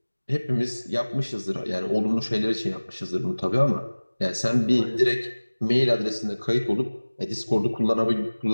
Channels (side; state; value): both; inverted; correlation -1.00